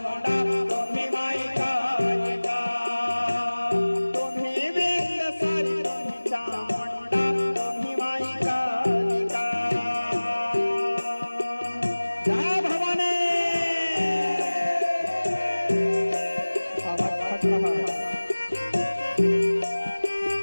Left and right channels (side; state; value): both; inverted; correlation -1.00